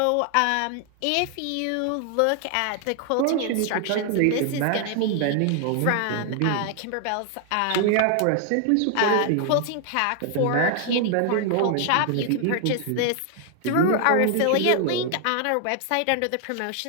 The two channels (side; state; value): both; different; correlation 0.00